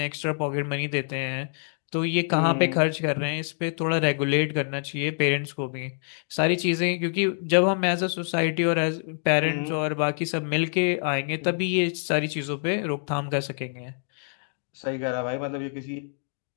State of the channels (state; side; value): silent; right; digital silence